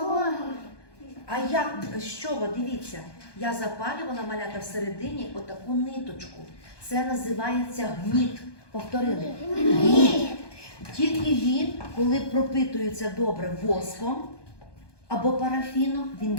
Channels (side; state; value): right; late; 1.2 ms